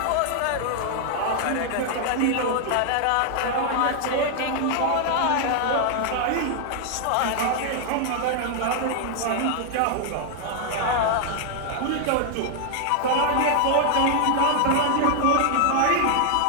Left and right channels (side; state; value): both; different; correlation 0.00